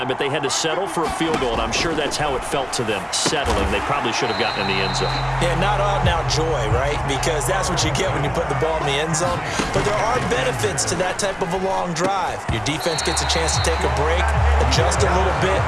but they had to settle for a field goal, and I'm sure that's how it felt to them, settling. They probably should have gotten in the end zone. Yeah, not out-and-out joy, right? Because that's what you get when you put the ball in the end zone. But there are benefits to that type of a long drive. Your defense gets a chance to take a break, adjust a little bit,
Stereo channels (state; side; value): identical; both; correlation 1.00